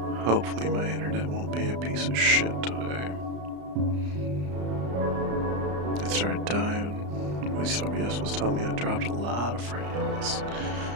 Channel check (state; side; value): late; left; 34 ms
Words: Hopefully my internet won't be a piece of shit today. It started dying. At least OBS was telling me I dropped a lot of frames.